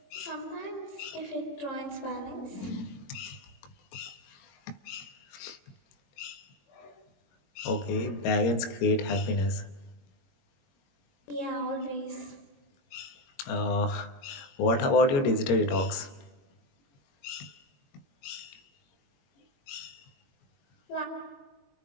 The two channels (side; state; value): right; late; 22 ms